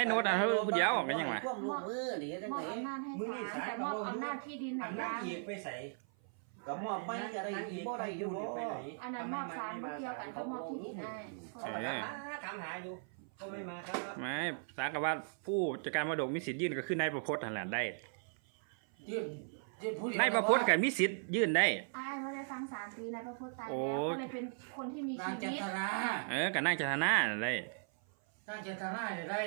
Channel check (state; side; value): silent; left; 53 dB below the other